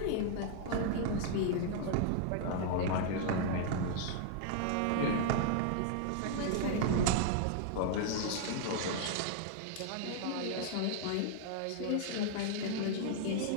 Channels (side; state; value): both; different; correlation 0.00